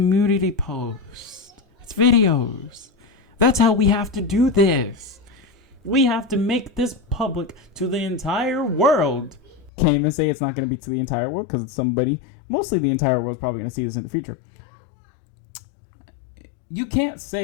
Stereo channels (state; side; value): drops out; right; at 9.7 s